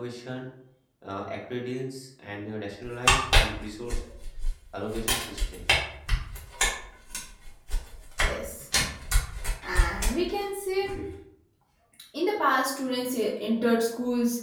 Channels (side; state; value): both; identical; correlation 1.00